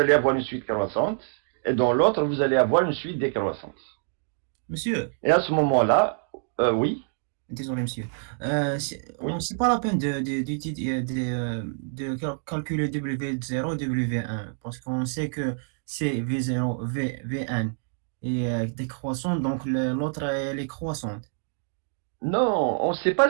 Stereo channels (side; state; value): left; silent; digital silence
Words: allez avoir une suite croissante et dans l'autre, vous allez avoir une suite décroissante. Monsieur, Et à ce moment-là, oui. désolé monsieur, Oui. c'est pas la peine de calculer W0 W1 parce qu'on sait que c'est V0, V1 et décroissante, donc l'autre elle est croissante. Non, on ne sait